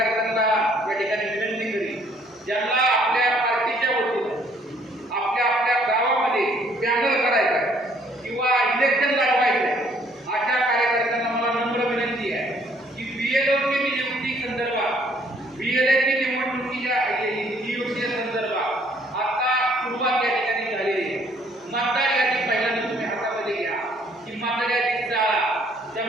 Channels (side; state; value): both; normal; correlation 0.63